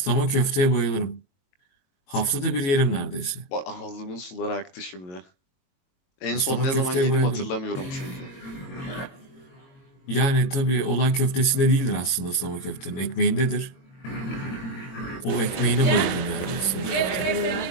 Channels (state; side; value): late; right; 22 ms